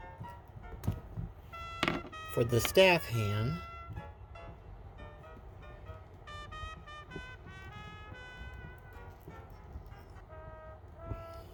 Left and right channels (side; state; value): both; identical; correlation 1.00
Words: for the staff hand.